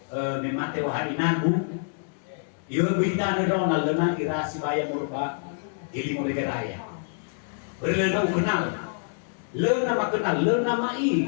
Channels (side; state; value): right; silent; digital silence